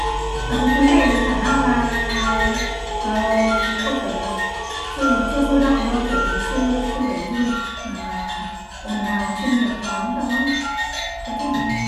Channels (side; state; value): both; identical; correlation 1.00